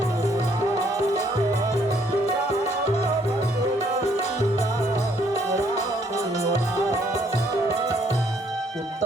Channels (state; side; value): normal; both; correlation 0.66